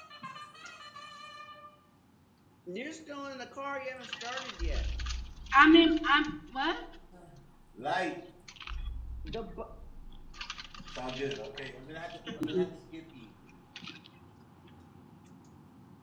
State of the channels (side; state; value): both; identical; correlation 1.00